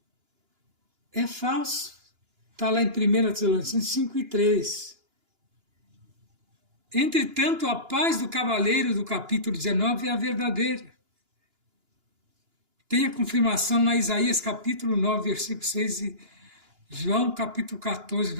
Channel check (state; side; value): late; left; 2.9 ms